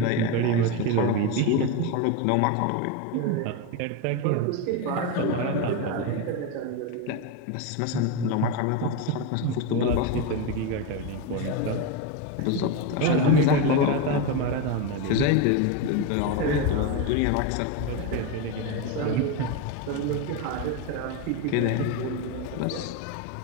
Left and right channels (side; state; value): both; different; correlation 0.04